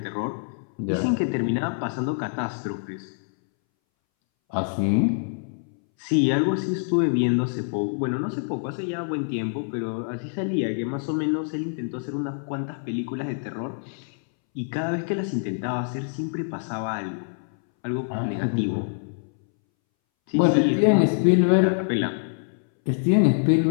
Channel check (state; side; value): silent; right; 62 dB below the other